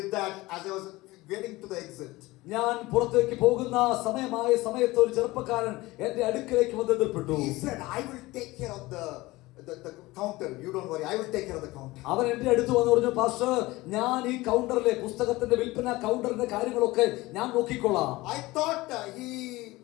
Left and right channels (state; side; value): quieter; right; 20.0 dB